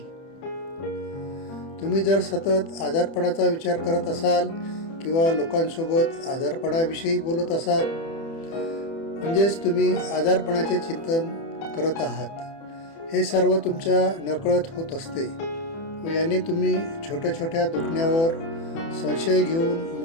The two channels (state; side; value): late; right; 30 ms